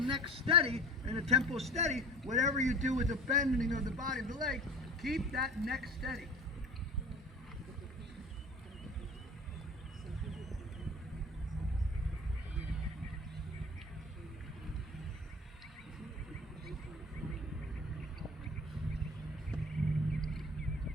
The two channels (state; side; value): normal; both; correlation 0.40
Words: neck steady and the tempo steady. Whatever you do with the bending of the body of the leg, keep that neck steady.